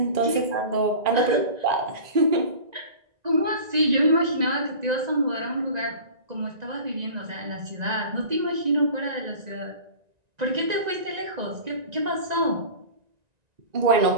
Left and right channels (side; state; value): left; late; 1.9 ms